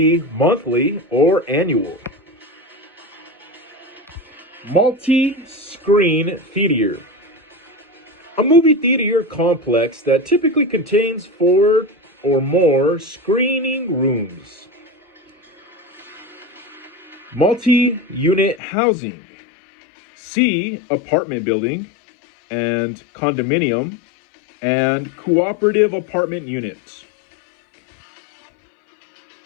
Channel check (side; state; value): right; drops out; at 18.6 s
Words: monthly or annual. Multi-screen theater. A movie theater complex that typically contains 4 or more screening rooms. Multi-unit housing. See apartment building and condominium and cooperative apartment unit.